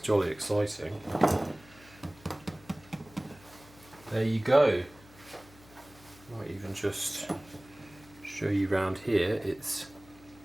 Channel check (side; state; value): left; noise; hum, 23 dB below the sound